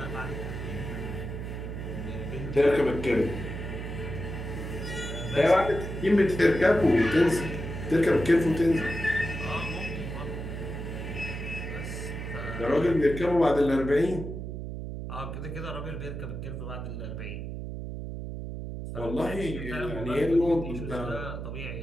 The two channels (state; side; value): noise; right; hum, 6 dB below the sound